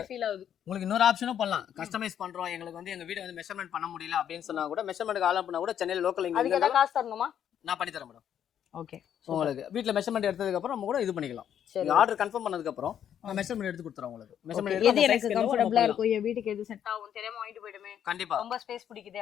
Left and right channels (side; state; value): right; quieter; 9.5 dB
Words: ஃபீல் ஆகுது. உங்களுக்கு இன்னொரு ஆப்ஷனும் பண்ணலாம். கஸ்டமைஸ் பண்றோம், எங்களுக்கு வந்து எங்க வீடு வந்து மெஷர்மென்ட் பண்ண முடியல அப்படின்னு சொன்னா கூட மெஷர்மென்ட்க்கு ஆல் பண்ணா கூட சென்னையில லோக்கல் இங்க அதுக்கு ஏதாவது காசு தரணுமா? நான் பண்ணி தரேன் மேடம். ஓகே உங்களுக்கு வீட்ல மெஷர்மென்ட் எடுத்ததுக்கு அப்புறம் நம்ம கூட இது பண்ணிக்கலாம். நீங்க ஆர்டர் கன்ஃபார்ம் பண்ணதுக்கு அப்புறம் நான் மெஷர்மென்ட் எடுத்து கொடுத்துறேன் உங்களுக்கு. மெஷர்மென்ட் எடுத்து எது எனக்கு கம்ஃபர்ட்டபிளா இருக்கும், என் வீட்டுக்கு எது செட் ஆகும் தெரியாம வாங்கிட்டு போய்டுமே. கண்டிப்பா ரொம்ப ஸ்பேஸ் பிடிக்குதே